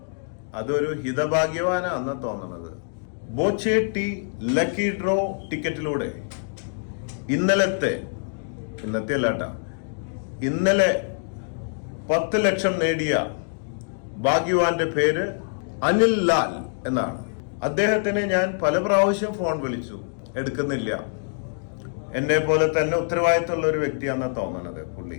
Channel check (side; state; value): right; silent; digital silence